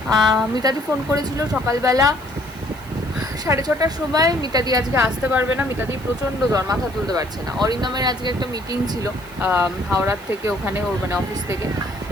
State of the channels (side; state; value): right; noise; hiss, 23 dB below the sound